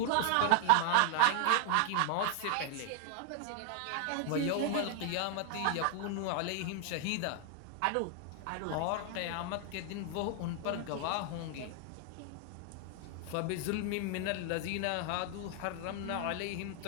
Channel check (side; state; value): both; different; correlation 0.00